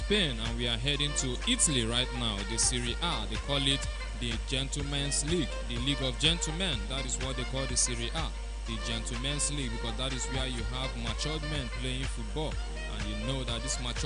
and we are heading to Italy right now. The Serie A, they call it the Gentlemen's League, the League of Gentlemen. That is what they call the Serie A, the Gentlemen's League, because that is where you have matured men playing football. And you know that these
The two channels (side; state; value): both; identical; correlation 1.00